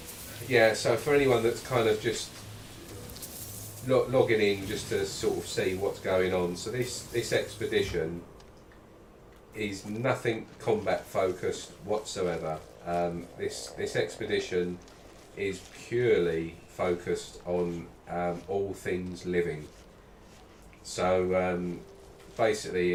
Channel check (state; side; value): identical; both; correlation 1.00